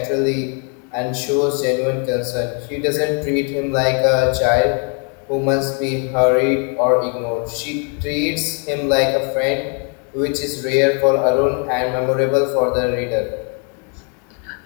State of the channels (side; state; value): right; quieter; 37.9 dB